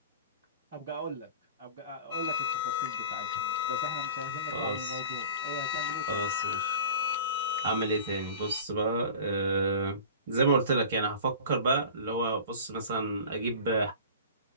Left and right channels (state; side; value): inverted; both; correlation -0.39